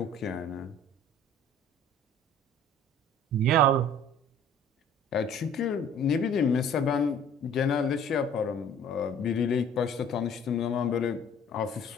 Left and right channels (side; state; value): both; normal; correlation 0.50